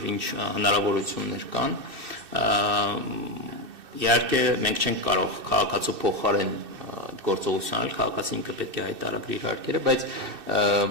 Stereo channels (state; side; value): late; left; 2.6 ms